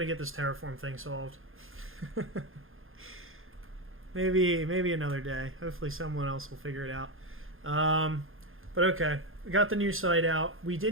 to get this terraform thing solved. maybe another day. Hopefully someone else will figure it out. But okay. We got the new site out. We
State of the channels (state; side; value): late; left; 0.60 ms